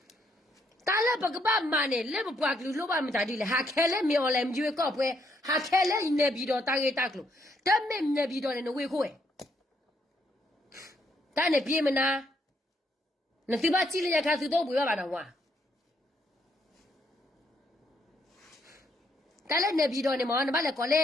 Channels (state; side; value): normal; both; correlation 0.73